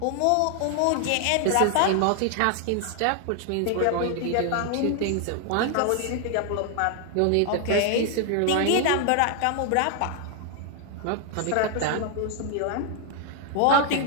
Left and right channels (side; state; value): both; different; correlation 0.00